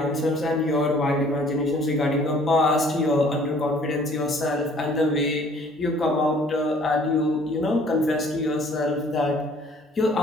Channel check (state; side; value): normal; both; correlation 0.56